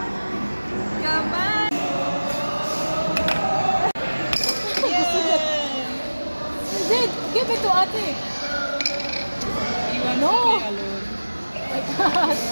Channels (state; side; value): inverted; both; correlation -1.00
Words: Come on. Zed, give it to Ate. No. Oh my God.